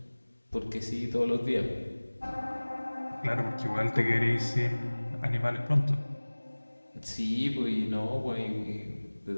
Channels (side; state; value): both; inverted; correlation -1.00